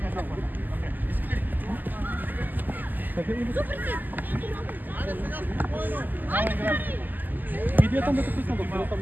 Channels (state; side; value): late; left; 0.086 ms